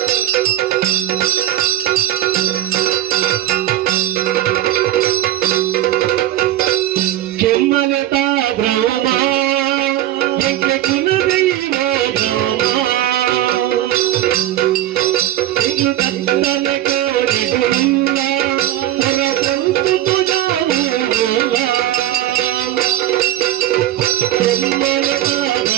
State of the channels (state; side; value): quieter; left; 13.2 dB